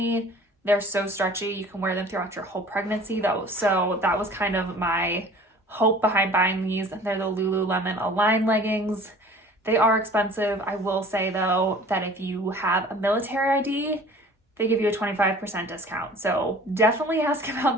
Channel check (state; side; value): normal; both; correlation 0.47